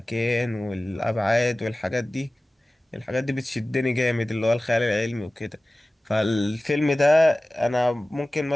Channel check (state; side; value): normal; both; correlation 0.97